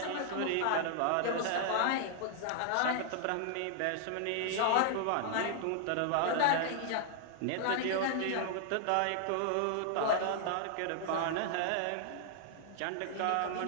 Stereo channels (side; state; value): both; different; correlation 0.00